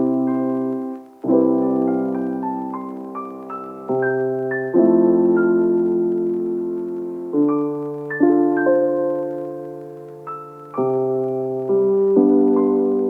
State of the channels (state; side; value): identical; both; correlation 1.00